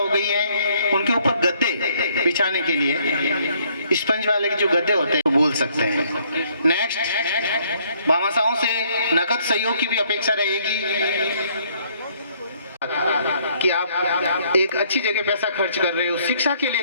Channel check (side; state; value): both; inverted; correlation -0.65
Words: गई है। उनके ऊपर गद्दे बिछाने के लिए स्पंज वाले के जो गद्दे होते हैं वो बोल सकते हैं। नेक्स्ट भामाशाहों से नकद सहयोग की भी अपेक्षा रहेगी। कि आप एक अच्छी जगह पैसा खर्च कर रहे हो, शिक्षा के लिए